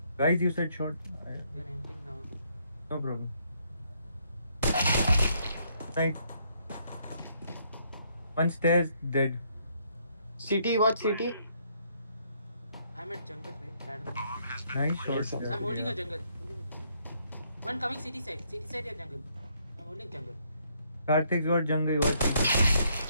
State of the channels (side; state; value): both; inverted; correlation -0.71